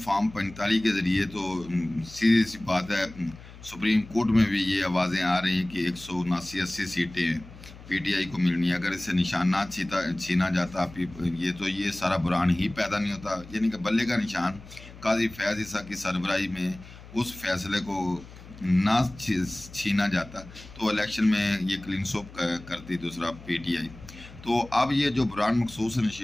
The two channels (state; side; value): noise; left; hum, 18 dB below the sound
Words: فارم 45 کے ذریعے تو سیدھی سی بات ہے، سپریم کورٹ میں بھی یہ آوازیں آ رہی ہیں کہ 179-80 سیٹیں پی ٹی آئی کو ملنی ہے۔ اگر اسے نشان نہ چھینا جاتا یہ سارا برہان ہی پیدا نہیں ہوتا، یعنی کہ بلے کا نشان قاضی فیاض عیسیٰ کی سربراہی میں اس فیصلے کو نہ چھینا جاتا تو الیکشن میں یہ کلین سوپ کرتی دوسرا پی ٹی آئی۔ تو اب یہ جو برہان مخصوص